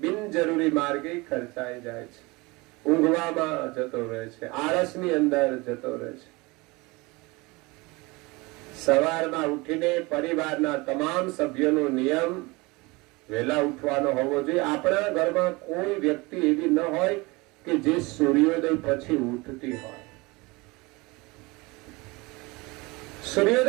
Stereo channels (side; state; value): left; quieter; 24.3 dB